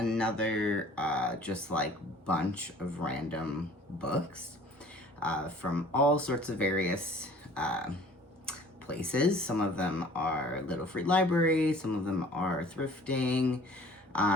just like bunch of random books from all sorts of various places. Some of them are little free libraries, some of them are thrifting.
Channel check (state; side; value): normal; both; correlation 0.50